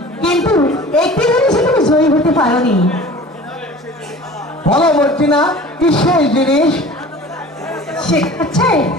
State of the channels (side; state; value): both; normal; correlation 0.42